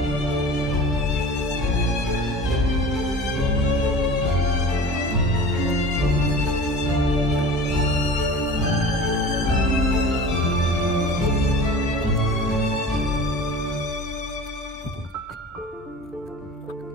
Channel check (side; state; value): both; normal; correlation 0.38